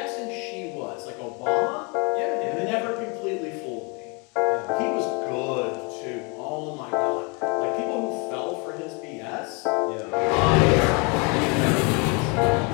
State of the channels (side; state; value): right; quieter; 31.8 dB